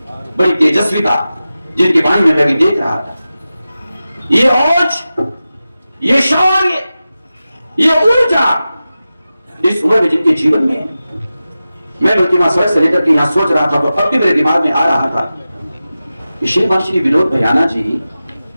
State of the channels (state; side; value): inverted; both; correlation -0.94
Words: बड़ी तेजस्विता जिनकी वाणी में मैं भी देख रहा था, ये औज, ये शौर्य, ये ऊर्जा इस उम्र में जिनके जीवन में, मैं बल्कि वहां सड़क से लेकर के यहां सोच रहा था तो अब भी मेरे दिमाग में आ रहा था कि श्रीमान श्री विनोद भैयाना जी,